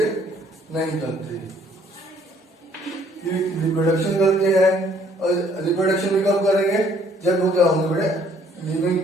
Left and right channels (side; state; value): both; normal; correlation 0.63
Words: नहीं करते, रिप्रोडक्शन करते हैं। और रिप्रोडक्शन भी कब करेंगे, जब वो क्या होंगे बड़े, लिविंग